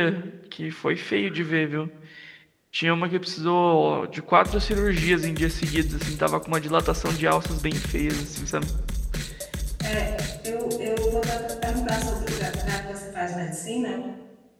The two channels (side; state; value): both; identical; correlation 1.00